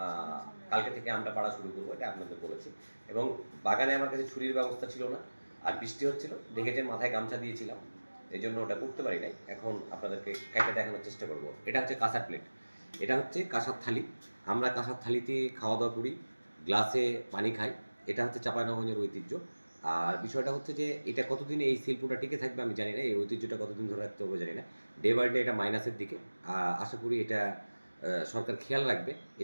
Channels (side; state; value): both; inverted; correlation -1.00